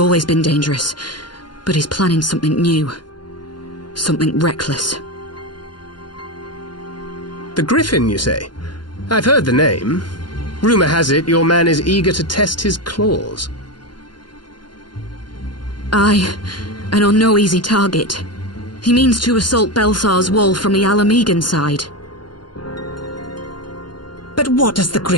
been dangerous, but he's planning something new. Something reckless. The Griffin, you say? I've heard the name. Rumor has it your man is eager to test his claws. Aye, and on no easy target. He means to assault Belsar's wall from the Alamegan side. But what does the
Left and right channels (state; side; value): late; right; 0.71 ms